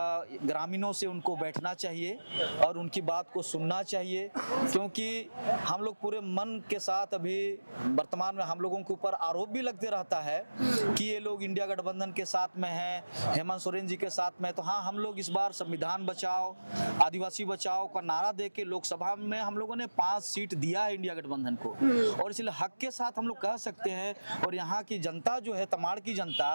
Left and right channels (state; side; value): inverted; both; correlation -1.00